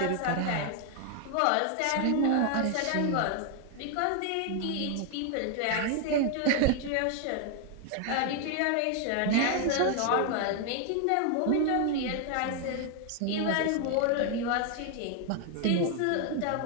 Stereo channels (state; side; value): different; both; correlation 0.00